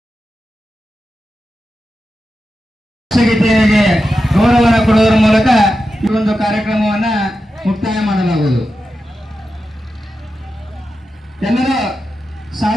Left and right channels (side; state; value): both; normal; correlation 0.90